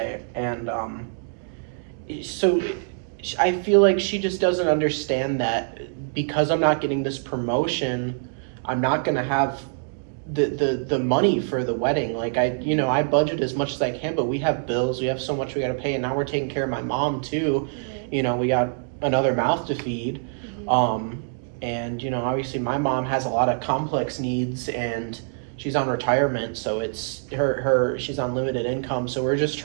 and so I feel like she just doesn't understand that because I'm not getting this promotion, I'm not gonna have the money for the wedding. Like I budget as much as I can, but we have bills, we have so much we got to pay, and now we're taking care of my mom too. Right. We got another mouth to feed. Mm-hmm. And obviously my mom has a lot of complex needs, and she's on retirement, so it's her she's on limited income, so we're just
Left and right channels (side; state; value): left; silent; digital silence